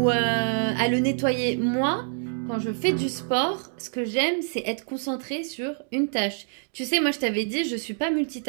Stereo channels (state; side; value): silent; left; digital silence